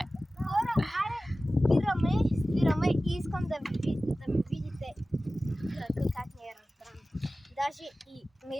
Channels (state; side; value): normal; both; correlation 0.96